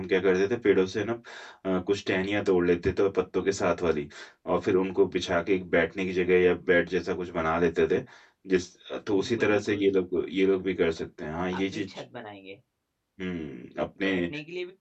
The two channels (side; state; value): both; identical; correlation 1.00